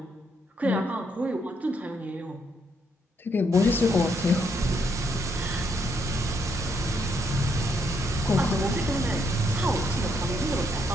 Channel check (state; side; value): normal; both; correlation 0.74